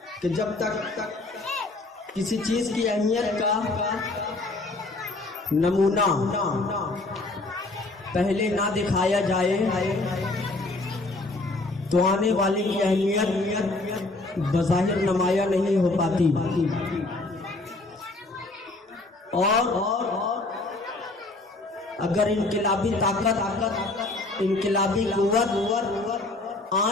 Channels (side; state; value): right; quieter; 3.0 dB